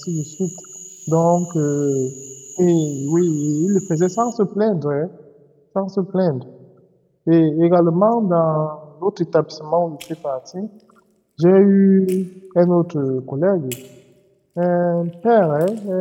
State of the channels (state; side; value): identical; both; correlation 1.00